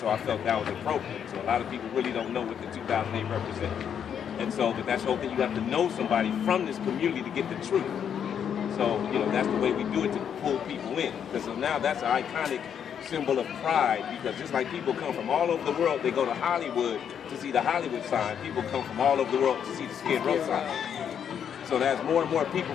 I felt that was appropriate. So a lot of people really don't know what the 2008 represents. And so, but that's the whole thing. You have to know somebody from this community to get the truth. So, that's the way we do it to pull people in. Because so now that's an iconic symbol of pride. Because just like people come from all over the world, they go to Hollywood to see the Hollywood sign. People come from all over the world to see the Skid Row sign. So as more and more people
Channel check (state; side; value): quieter; right; 8.3 dB